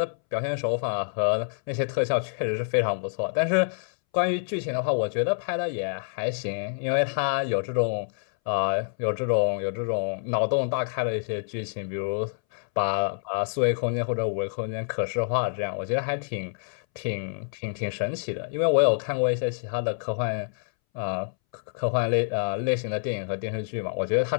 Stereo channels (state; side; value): silent; right; 60 dB below the other